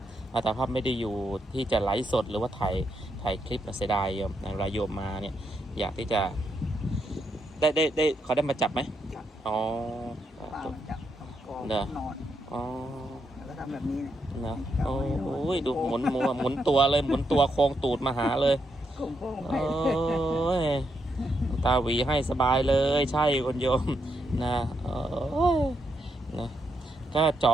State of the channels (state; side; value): normal; both; correlation 0.80